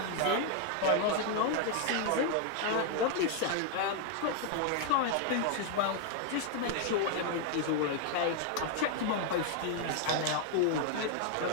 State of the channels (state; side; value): different; both; correlation 0.00